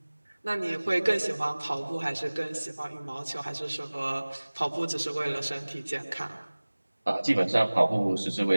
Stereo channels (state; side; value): inverted; both; correlation -1.00